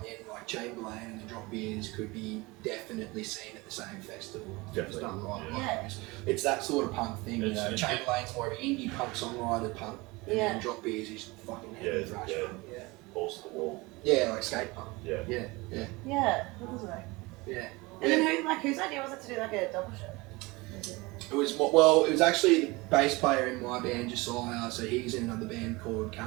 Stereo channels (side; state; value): left; quieter; 23.5 dB